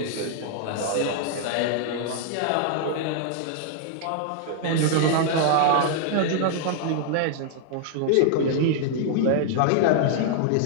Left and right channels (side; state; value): both; different; correlation -0.01